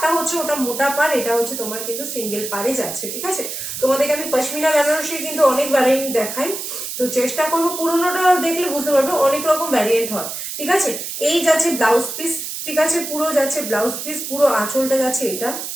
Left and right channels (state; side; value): noise; right; hiss, 6 dB below the sound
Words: হচ্ছে ওটা মোটা পাড়, এটা হচ্ছে তোমার কিন্তু সিঙ্গেল পাড়ে যাচ্ছে, ঠিক আছে। তোমাদেরকে আমি পশমিনা বেনারসির কিন্তু অনেক ভ্যারিয়েন্ট দেখাই, তো চেষ্টা করবো পুরোনোটা দেখলে বুঝতে পারবে অনেক রকম ভ্যারিয়েন্ট হয়, ঠিক আছে। এই যাচ্ছে ব্লাউজ পিস, ঠিক আছে পুরো যাচ্ছে ব্লাউজ পিস, পুরো আঁচলটা যাচ্ছে এটা,